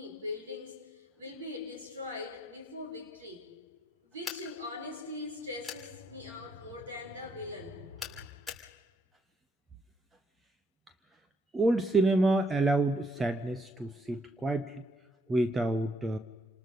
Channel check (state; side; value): normal; both; correlation 0.72